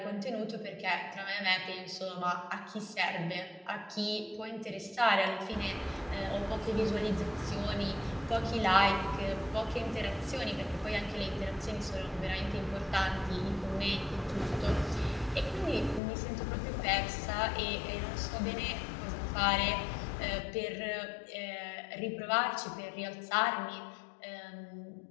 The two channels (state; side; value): drops out; right; at 16.0 s